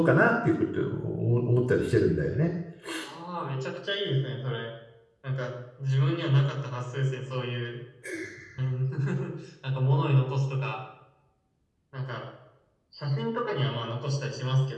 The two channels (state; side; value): identical; both; correlation 1.00